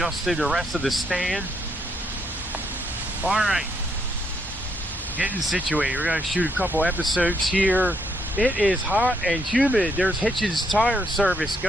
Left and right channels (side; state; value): both; normal; correlation 0.74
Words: the rest of the stand. Alright, getting situated. We're going to shoot a couple episodes here. It is hot and humid. There's Hitchens Tire Service